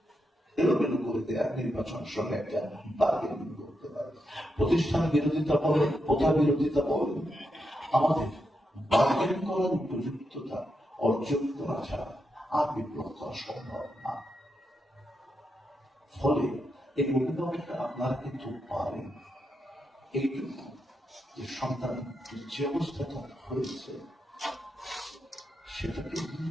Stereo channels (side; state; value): both; normal; correlation 0.84